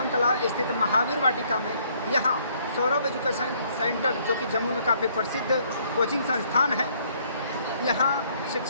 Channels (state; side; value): inverted; both; correlation -0.65